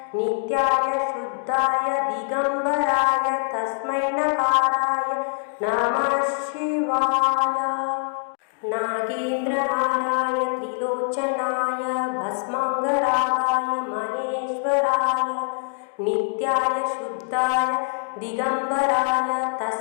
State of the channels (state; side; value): silent; right; digital silence